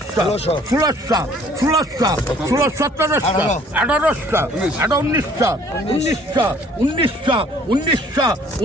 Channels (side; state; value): both; normal; correlation 0.57